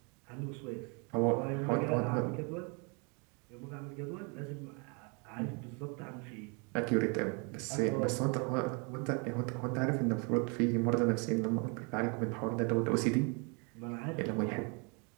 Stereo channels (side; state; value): left; quieter; 34.0 dB